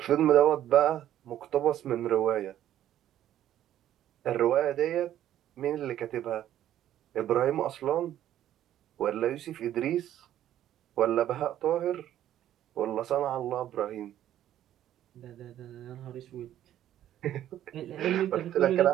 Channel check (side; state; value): left; quieter; 11.9 dB